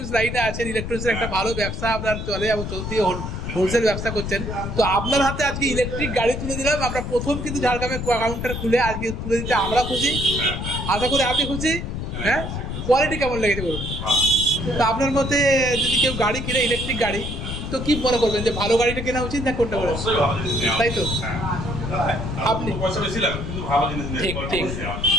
লাইনে আছেন, ইলেকট্রনিক্সের একটা ভালো ব্যবসা আপনার চলে এবং চলতি হোলসেল ব্যবসা করছেন। তো আপনার হাতে আজকে ইলেকট্রিক গাড়ি তুলে দিলাম আমরা, প্রথম কিন্তু ঝাড়গ্রামে কাউন্টার খুলে আজকে তুলে দিতে আমরা খুশি, আশা করি আপনি খুশি। হ্যাঁ, কোয়ালিটি কেমন লেগেছে বলুন? তো আপনার মতে যদি কেউ গাড়ি কিনে, ইলেকট্রিক গাড়ি, তো কি মনে করবেন যে ভালো গাড়িটা কেনা উচিত না কোনটা করে? তাই তো আপনি ঠিক ঠিক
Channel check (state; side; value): noise; left; rumble, 5 dB below the sound